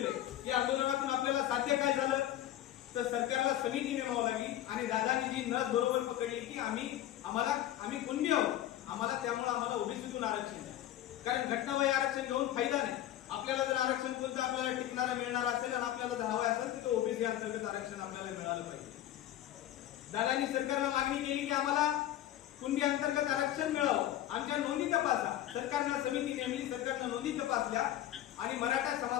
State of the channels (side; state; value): right; quieter; 12.8 dB